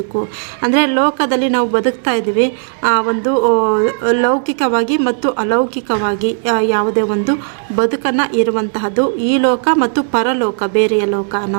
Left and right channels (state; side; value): silent; left; digital silence